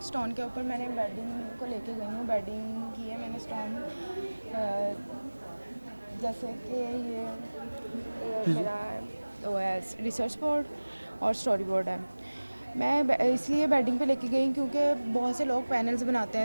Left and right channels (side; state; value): both; inverted; correlation -1.00